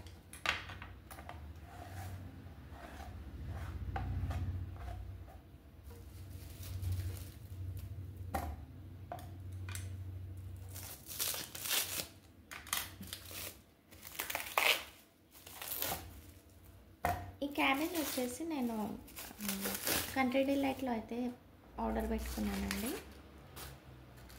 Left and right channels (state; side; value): identical; both; correlation 1.00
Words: ఈ క్యాబేజ్ వచ్చేసి నేను కంట్రీ డిలైట్లో అయితే ఆర్డర్ పెట్టుకున్నానండి.